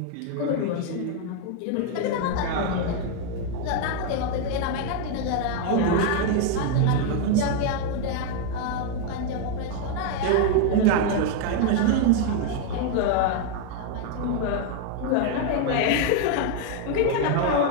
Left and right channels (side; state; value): both; different; correlation 0.00